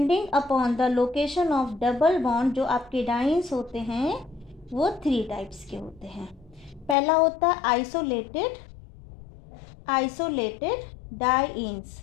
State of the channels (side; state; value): right; drops out; at 7.0 s